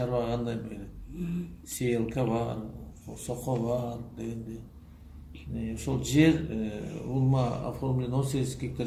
кандай берет? Сейлка бар, сохо бар дегенде. Ошол жер улма оформлен 18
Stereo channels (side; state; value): both; identical; correlation 1.00